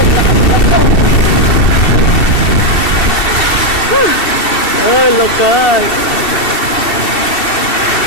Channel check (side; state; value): right; late; 2.7 ms